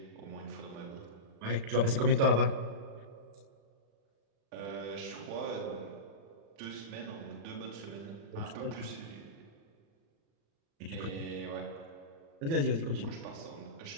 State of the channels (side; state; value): left; late; 36 ms